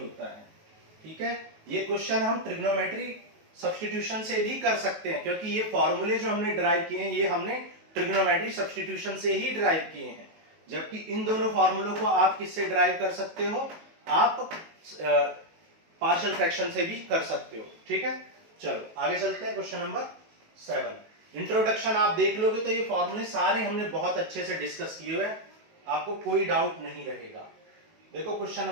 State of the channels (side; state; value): left; late; 19 ms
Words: है, ठीक है। ये क्वेश्चन हम ट्रिग्नोमेट्री सब्स्टिट्यूशन से भी कर सकते हैं, क्योंकि ये फॉर्मूले जो हमने ड्राइव किए हैं ये हमने ट्रिग्नोमेट्री सब्स्टिट्यूशन से ही ड्राइव किए हैं, जबकि इन दोनों फॉर्मूलों को आप किससे ड्राइव कर सकते हो, आप पार्शियल फ्रैक्शन से भी कर सकते हो, ठीक है। चलो आगे चलते हैं, क्वेश्चन नंबर 7। इंट्रोडक्शन आप देख लोगे तो ये फॉर्मूले सारे हमने बहुत अच्छे से डिस्कस किए हुए हैं, आपको कोई डाउट नहीं रहेगा। देखो क्वेश्चन